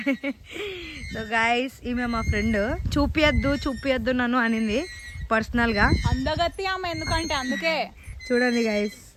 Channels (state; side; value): identical; both; correlation 1.00